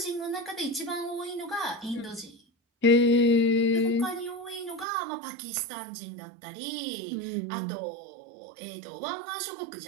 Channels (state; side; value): drops out; left; at 4.9 s